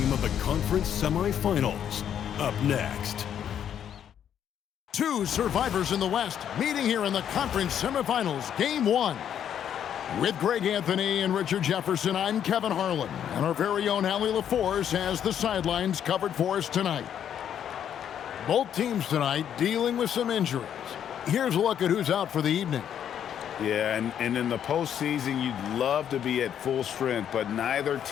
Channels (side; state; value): right; quieter; 9.3 dB